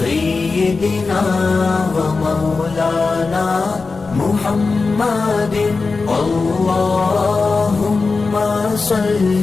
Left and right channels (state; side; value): quieter; right; 4.2 dB